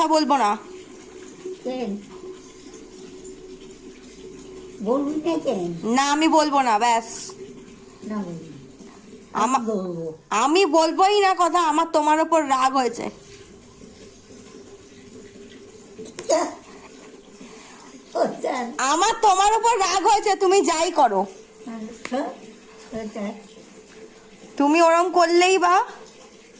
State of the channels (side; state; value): both; identical; correlation 1.00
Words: বলবো না। কেন বলবি না কেন? না আমি বলবো না, ব্যাস। না বলবি, আমা- বলবো। আমি বলবোই না কথা। আমার তোমার ওপর রাগ হয়েছে। আমার তোমার ওপর রাগ হয়েছে, তুমি যাই করো। তুমি ওরম করলেই বা,